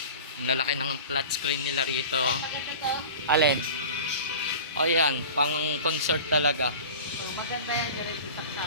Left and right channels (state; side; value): inverted; both; correlation -0.36